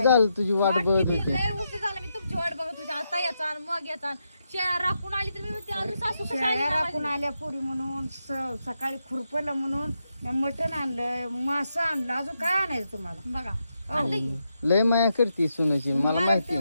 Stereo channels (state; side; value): inverted; both; correlation -0.84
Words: झालं तुझी वाट वाट बघत किती होते. लय उशीर झाला मी तुमची वाट बघत होते आता याचा मग याचा शेळ्या राखून आली तर मी म्हणते अजून सासू कशी आली शेळ्या नाही राखून माझी? आल्या पुरी म्हणून सकाळी खुरपलं म्हणून मी मटण आणलं मासं आणलं अजून काय आणायचं तुम्हाला बघा आणलं की लय माया करते सुनाची मला मला माहिती.